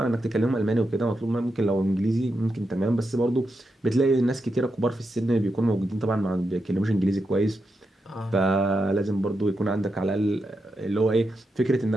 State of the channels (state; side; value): normal; both; correlation 0.86